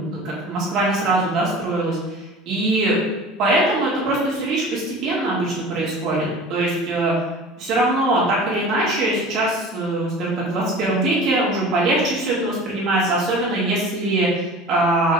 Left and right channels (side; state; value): both; normal; correlation 0.39